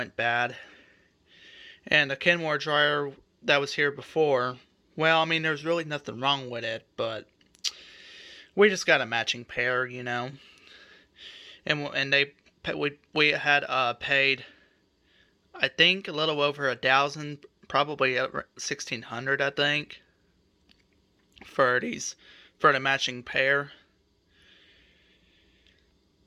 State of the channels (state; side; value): identical; both; correlation 1.00